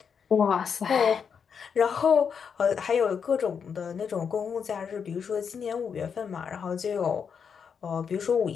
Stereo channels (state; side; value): quieter; right; 6.7 dB